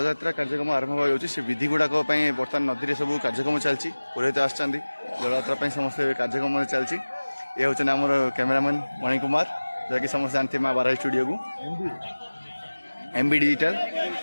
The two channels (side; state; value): both; inverted; correlation -1.00